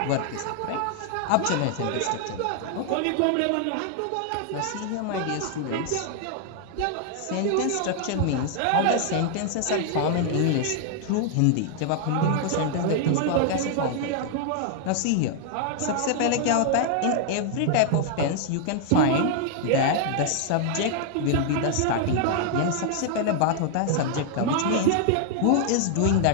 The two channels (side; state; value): both; different; correlation 0.00